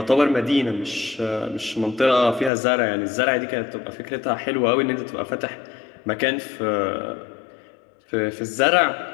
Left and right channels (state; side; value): drops out; right; at 2.5 s